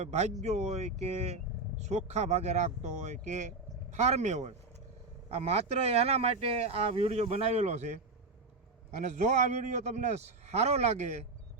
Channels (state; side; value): quieter; left; 3.5 dB